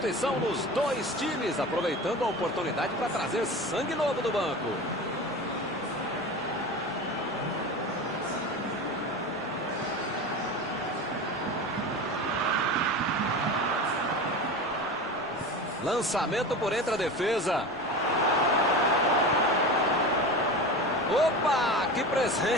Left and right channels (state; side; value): noise; right; rumble, 27 dB below the sound